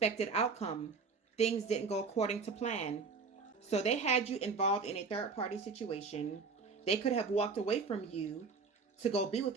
outcome. Things didn't go according to plan. So they had you involved in a third-party situation. They could have walked away from you to go be with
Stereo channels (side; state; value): left; quieter; 4.9 dB